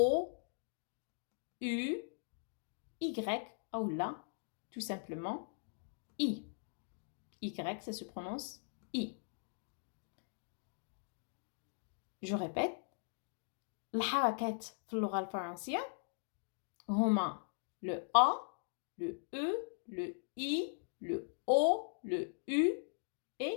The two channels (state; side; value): silent; right; digital silence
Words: U, Y, ou là, tout simplement, I. Y, ça se prononce I. Je répète, الحركات في اللغة الفرنسية هما le A, le E, le I, le O, le U